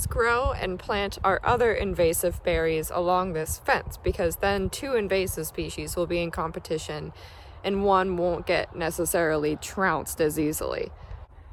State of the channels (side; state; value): both; identical; correlation 1.00